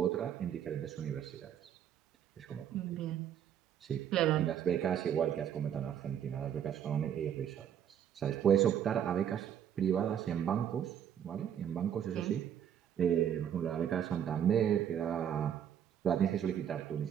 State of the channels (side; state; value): left; quieter; 9.3 dB